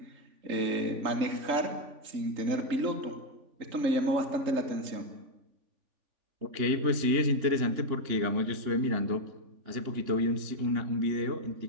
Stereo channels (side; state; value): left; late; 3.5 ms